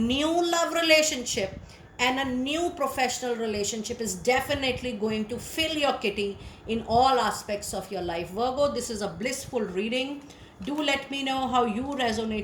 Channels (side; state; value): both; identical; correlation 1.00